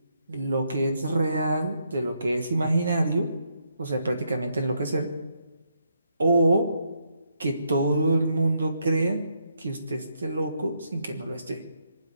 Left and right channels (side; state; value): both; inverted; correlation -0.77